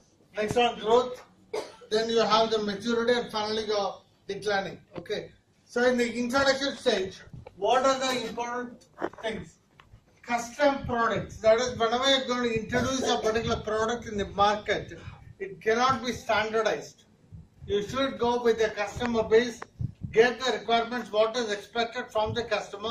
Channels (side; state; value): both; identical; correlation 1.00